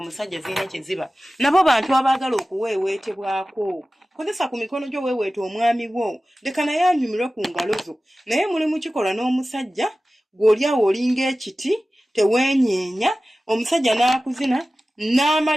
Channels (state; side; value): normal; both; correlation 0.96